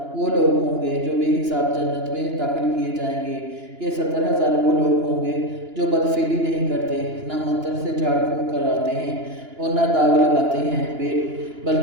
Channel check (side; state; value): left; late; 2.9 ms